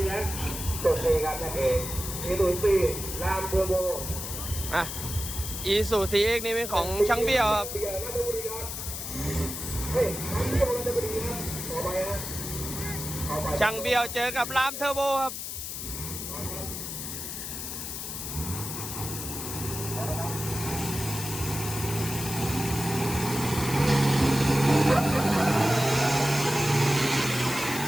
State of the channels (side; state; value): left; noise; hiss, 6 dB below the sound